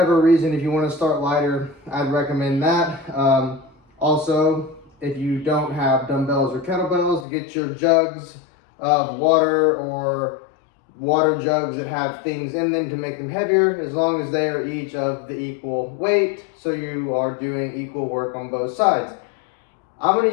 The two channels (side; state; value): right; drops out; at 7.2 s